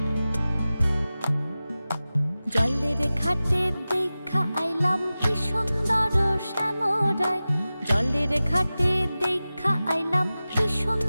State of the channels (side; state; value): both; inverted; correlation -0.96